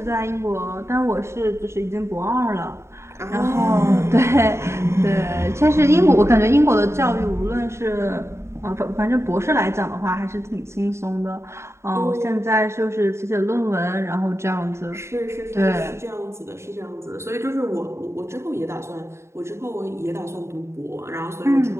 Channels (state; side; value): late; left; 0.13 ms